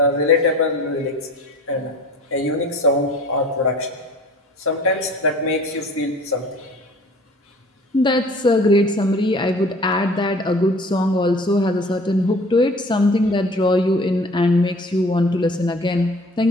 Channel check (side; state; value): both; normal; correlation 0.47